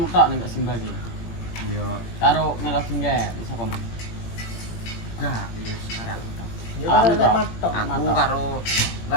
tok ning Simba iki. Iya, Karo Melodi nggak iso paman. enggak, ya sekarang. Aku Matok. karo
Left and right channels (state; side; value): late; right; 17 ms